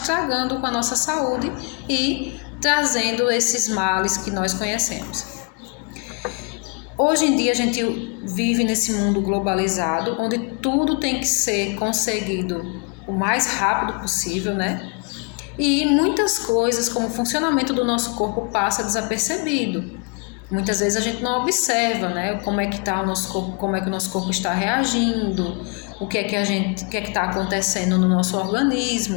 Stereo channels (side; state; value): right; quieter; 34.7 dB